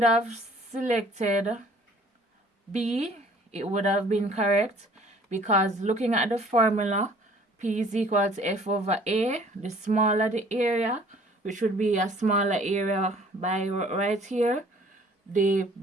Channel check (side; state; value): both; normal; correlation 0.55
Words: have selected B, it would have been correct because looking at the formula, P is equal to F over A. The smaller the area, which would be a smaller area by right here, the